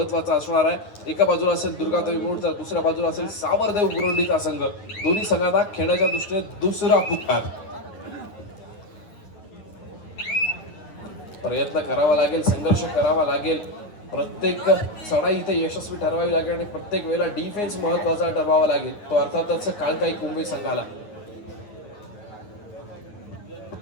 असणार आहे. एका बाजूला असेल दुर्गादेवी मुरुड तर दुसऱ्या बाजूला असेल सावरदेव मुरुंडीचा संघ. दोन्ही संघांना खेळण्याच्या दृष्टीने दुसरा पुकार. प्रयत्न करावा लागेल संघर्ष करावा लागेल. प्रत्येक चढाई इथे यशस्वी ठरवावी लागेल आणि प्रत्येक वेळेला डिफेन्स महत्वाचा ठरवावा लागेल तो अर्थातच काळकाई कुंभे संघाला.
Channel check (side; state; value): right; late; 9.5 ms